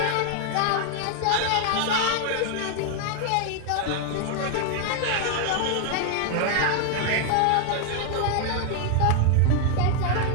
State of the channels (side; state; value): both; different; correlation 0.00